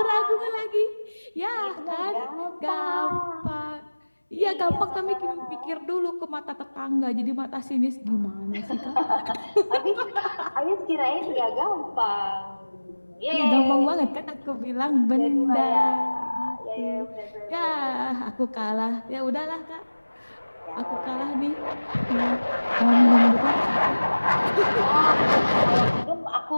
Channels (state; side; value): inverted; both; correlation -1.00